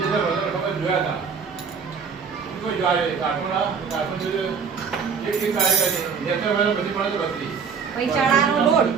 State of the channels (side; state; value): left; quieter; 6.0 dB